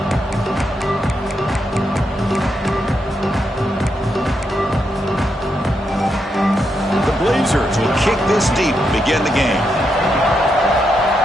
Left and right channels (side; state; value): both; normal; correlation 0.82